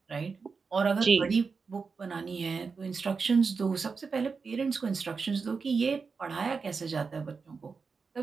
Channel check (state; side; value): quieter; left; 5.0 dB